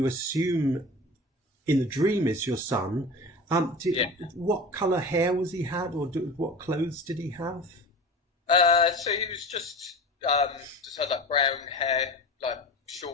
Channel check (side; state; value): both; normal; correlation 0.33